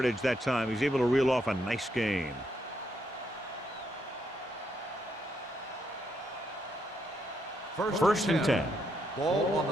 that time. He's able to reel off a nice gain. First and 10. Ball on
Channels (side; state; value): both; normal; correlation 0.77